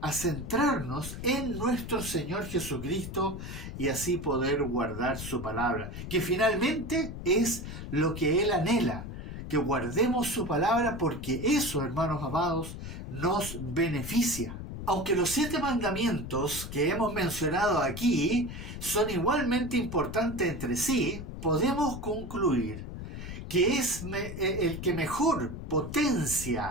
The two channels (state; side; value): noise; left; rumble, 8 dB below the sound